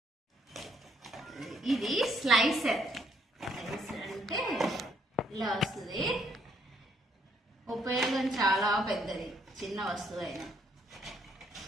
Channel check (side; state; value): both; normal; correlation 0.70